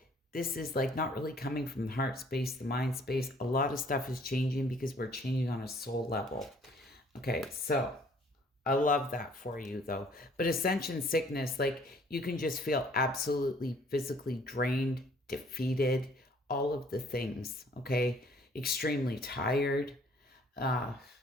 This is like not really coming from the heart space, the mind space. A lot of stuff is changing because we're changing on a soul level. Okay, so I love that for you though. But ascension sickness, like you can just feel absolutely physically drained, defeated, all of the things, okay? Extremely tired, not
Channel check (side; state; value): both; normal; correlation 0.58